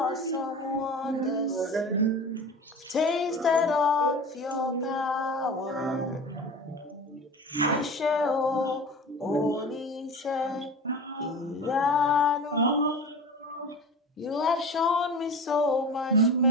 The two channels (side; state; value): both; normal; correlation 0.33